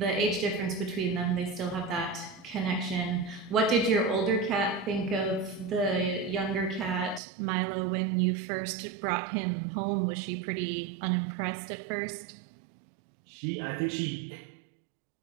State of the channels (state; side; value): drops out; left; at 7.2 s